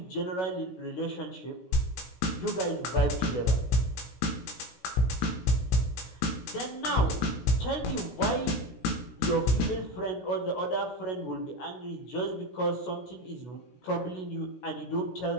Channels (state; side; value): late; right; 16 ms